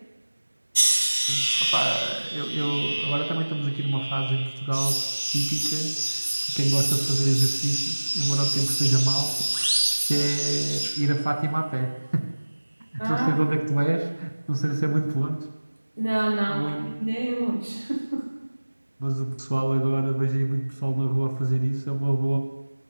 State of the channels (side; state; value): both; inverted; correlation -1.00